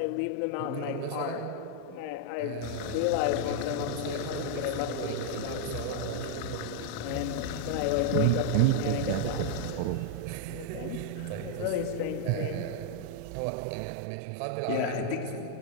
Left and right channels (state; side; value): different; both; correlation -0.01